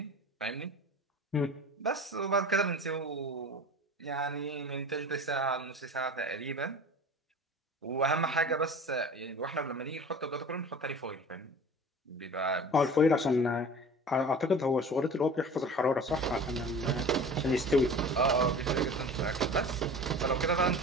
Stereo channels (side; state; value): both; normal; correlation 0.39